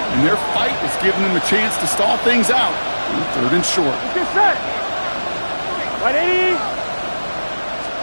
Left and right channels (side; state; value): both; inverted; correlation -1.00